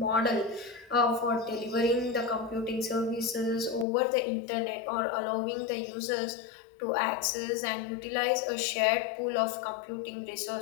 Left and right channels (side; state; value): right; drops out; at 3.9 s